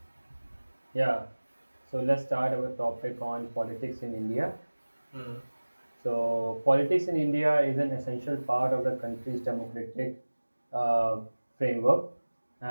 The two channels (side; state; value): both; inverted; correlation -1.00